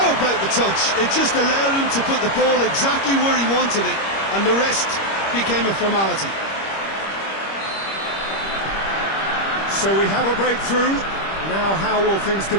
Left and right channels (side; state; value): right; late; 25 ms